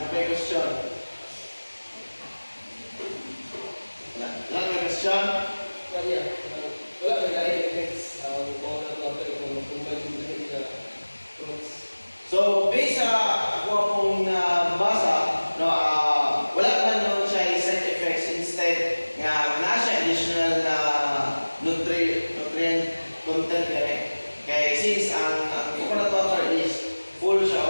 question. Wala may question? Wala may lain effects kung mag-combine yung lahat sa fruits. So, based sa ako akong nabasa, no, wala man nun siya side effects. Instead, nga na siya additional na nutrient content kaya since ang coconut water is full siya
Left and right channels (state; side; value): inverted; both; correlation -1.00